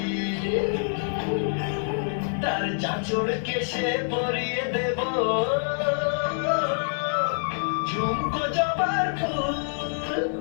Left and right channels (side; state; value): right; silent; digital silence